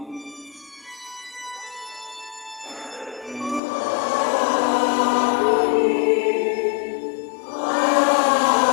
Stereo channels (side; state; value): right; drops out; at 3.6 s